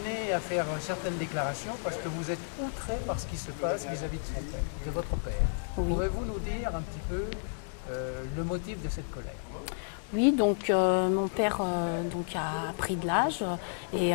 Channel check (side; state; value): right; silent; 57 dB below the other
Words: à faire certaines déclarations parce que vous êtes outré par ce qui se passe vis-à-vis de votre père. Oui. Pourrez-vous nous dire un petit peu le motif de cette colère ? Oui, donc mon père a pris de l'âge et